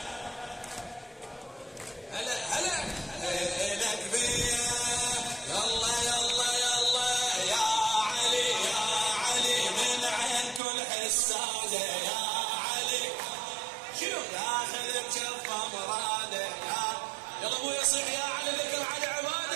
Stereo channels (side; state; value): left; drops out; at 10.6 s